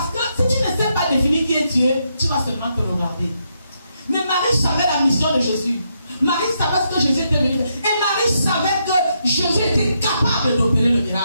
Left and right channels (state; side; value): inverted; both; correlation -0.79